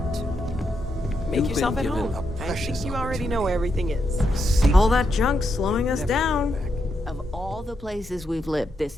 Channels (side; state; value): both; normal; correlation 0.82